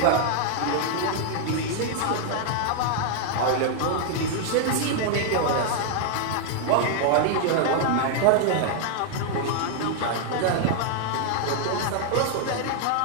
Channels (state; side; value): different; both; correlation 0.00